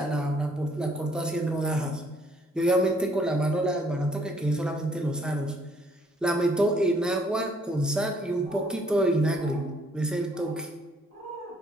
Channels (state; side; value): normal; both; correlation 0.65